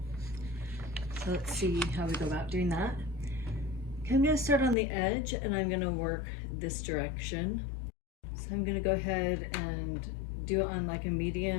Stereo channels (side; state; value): right; drops out; at 4.8 s